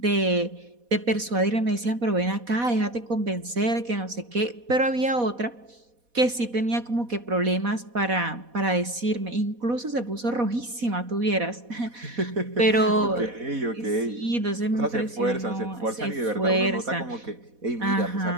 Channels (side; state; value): left; late; 4.1 ms